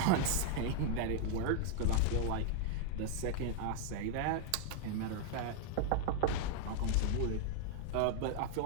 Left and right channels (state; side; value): different; both; correlation 0.00